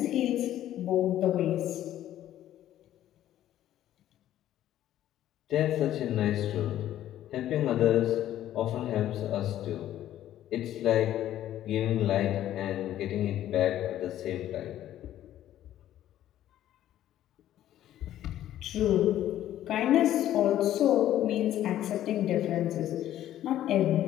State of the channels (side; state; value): right; quieter; 12.4 dB